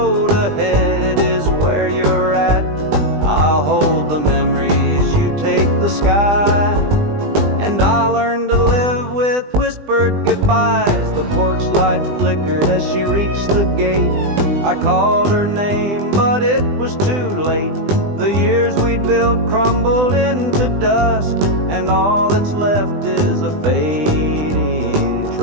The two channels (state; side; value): late; left; 20 ms